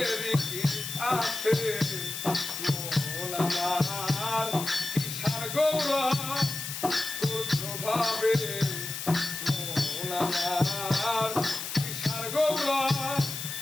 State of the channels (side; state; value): left; noise; hiss, 6 dB below the sound